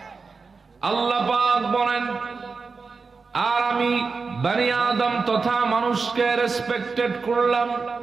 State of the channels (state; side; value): quieter; left; 4.6 dB